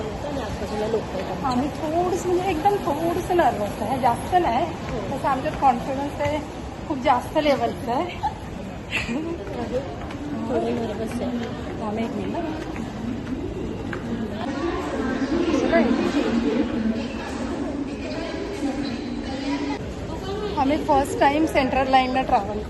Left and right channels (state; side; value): identical; both; correlation 1.00